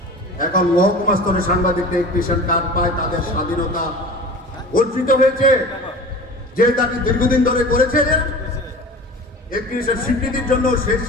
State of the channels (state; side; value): normal; both; correlation 0.37